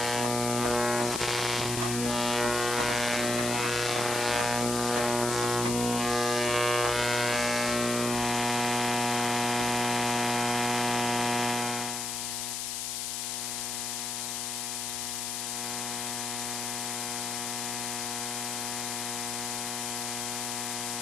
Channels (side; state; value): left; noise; hiss, 2 dB below the sound